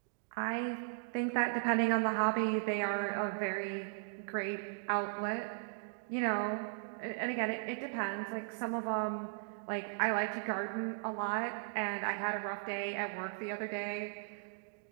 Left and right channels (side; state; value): left; silent; digital silence